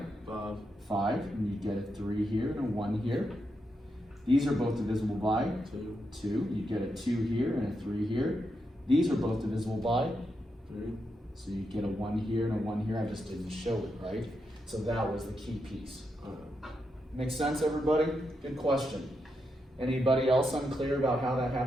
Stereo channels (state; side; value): normal; both; correlation 0.84